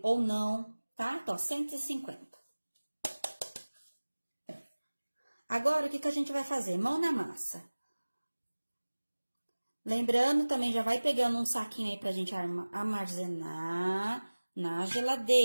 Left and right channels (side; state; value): both; inverted; correlation -1.00